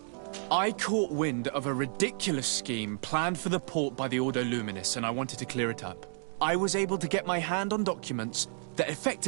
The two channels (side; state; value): left; silent; 57 dB below the other